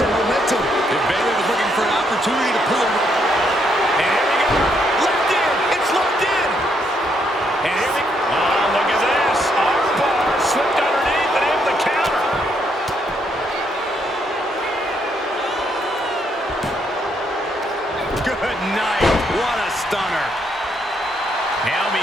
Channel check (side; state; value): both; normal; correlation 0.74